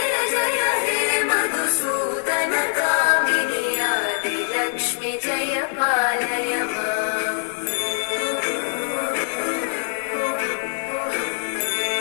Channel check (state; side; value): silent; right; digital silence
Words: जय हे मधुसूदन कामिनि आदिलक्ष्मि जय पालय माम्